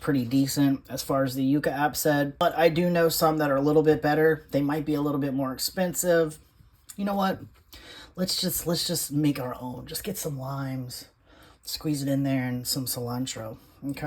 decent as far as the Yuka app said. But I do know some that are a little bit better. They might be a little bit more expensive. You know what? Let's just make our own. Just get some limes, squeeze it in there, and some cilantro.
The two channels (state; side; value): identical; both; correlation 1.00